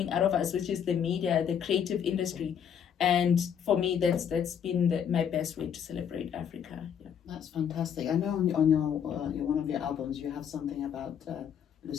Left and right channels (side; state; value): right; quieter; 8.2 dB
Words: out of us, which is the media, the creative industry. And for me, that's been my best way to celebrate Africa. Yeah. That's fantastic. I know on your one of your albums you have something about